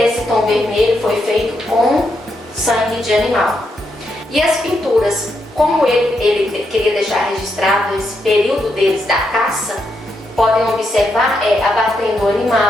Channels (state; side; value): normal; both; correlation 0.81